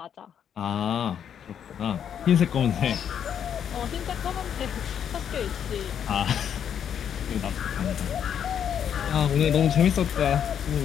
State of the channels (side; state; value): right; quieter; 8.7 dB